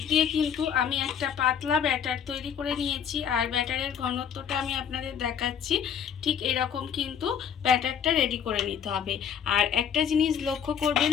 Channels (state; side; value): quieter; right; 8.1 dB